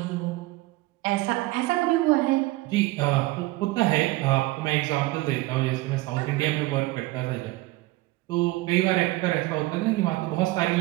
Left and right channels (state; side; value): quieter; left; 19.7 dB